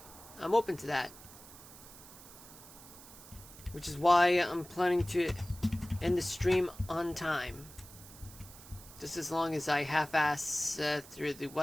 I'm open to that. Which is why I'm planning to end the stream on time. Just as long as I half-ass through the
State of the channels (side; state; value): right; noise; hiss, 18 dB below the sound